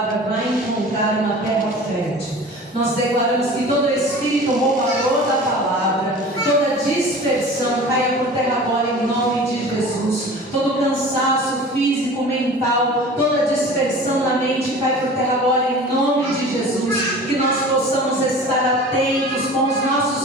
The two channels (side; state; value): both; normal; correlation 0.40